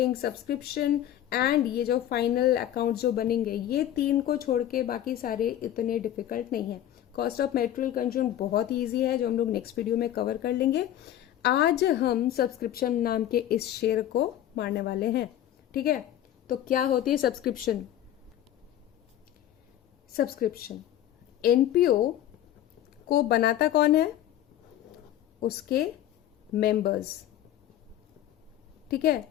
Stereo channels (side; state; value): right; quieter; 12.0 dB